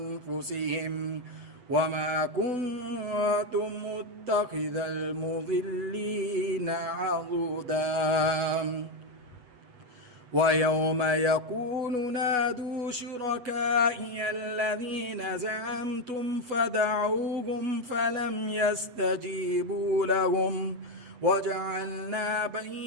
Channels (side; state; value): left; late; 8.1 ms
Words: وما كنت متخذ المضلين عضدا ويوم يقول نادوا شركائي الذين زعمتم فدعوهم فلم يستجيبوا لهم وجعلنا